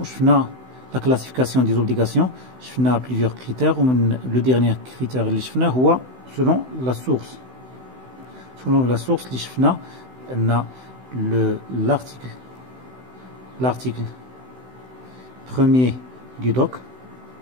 لا كلاسيفيكاسيون دي زوبليغاسيون، شفنا بليزيور كريتير، ومن لو ديرنيير كريتير اللي شفناه هو سولون لا سورس. Selon la source, l'article premier du doc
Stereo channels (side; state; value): left; late; 16 ms